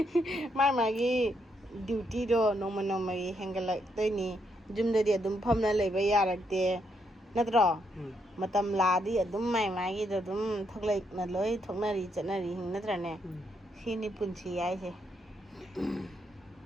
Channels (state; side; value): normal; both; correlation 0.77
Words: ꯃꯥꯒꯤ ꯗ꯭ꯌꯨꯇꯤꯗꯣ ꯅꯣꯡꯃꯒꯤ ꯍꯦꯟꯒꯠꯂꯛꯇꯣꯏꯅꯤ ꯌꯨꯝꯗꯗꯤ ꯑꯗꯨꯝ ꯐꯝꯅ ꯂꯩꯕ ꯌꯥꯔꯛꯇꯦ ꯅꯠꯇ꯭ꯔꯣ ꯃꯇꯝ ꯂꯥꯛꯑꯗꯤ ꯑꯗꯨꯝ ꯃꯥꯒꯤꯗꯣ ꯑꯗꯨꯝ ꯊꯣꯛꯂꯛꯅ ꯂꯣꯏ ꯊꯣꯛꯅꯔꯤ ꯆꯠꯅꯔꯤ ꯅꯠꯇ꯭ꯔꯅꯦ ꯁꯤꯅꯤ ꯄꯨꯟꯁꯤ ꯍꯥꯏꯁꯦ